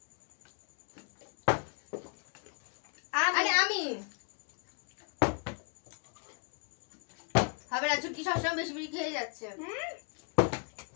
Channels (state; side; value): quieter; right; 37.9 dB